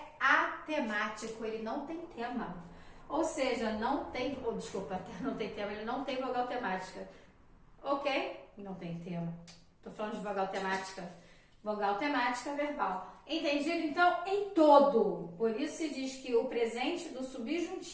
atemático, ele não tem tema. Ou seja, não tem tema, ele não tem vogal temática. Ok? Não tem tema. Tô falando de vogal temática. Vogal temática verbal. Entendido? Então, em todo. Por isso se diz que o presente do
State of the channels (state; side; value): identical; both; correlation 1.00